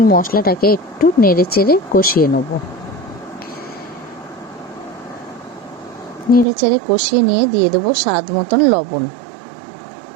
মশলাটাকে একটু নেড়ে চেড়ে কষিয়ে নেব। নেড়ে চেড়ে কষিয়ে নিয়ে দিয়ে দেবো স্বাদ মতন লবণ।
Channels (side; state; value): left; drops out; at 6.5 s